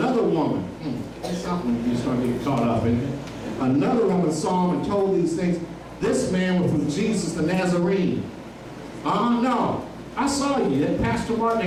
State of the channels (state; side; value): identical; both; correlation 1.00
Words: woman, that's something you start getting caught up in. Another woman saw him and told these things. This man was from Jesus the Nazarene. No, I saw you. That Pastor Martin,